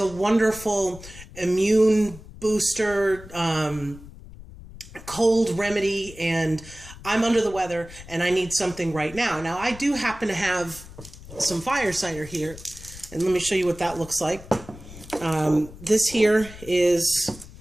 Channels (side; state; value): left; noise; rumble, 17 dB below the sound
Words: wonderful immune booster, cold remedy, and I'm under the weather and I need something right now. Now, I do happen to have some fire cider here, and let me show you what that looks like. This here is